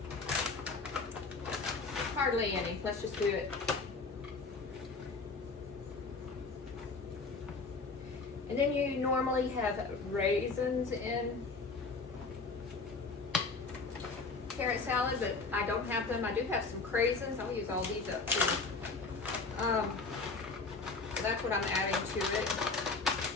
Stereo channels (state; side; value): quieter; right; 4.1 dB